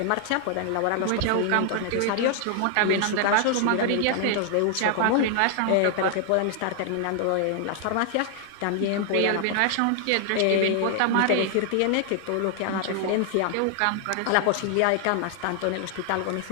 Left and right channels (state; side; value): different; both; correlation 0.00